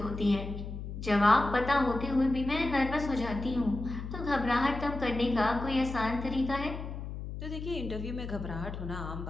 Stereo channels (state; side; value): noise; left; hum, 7 dB below the sound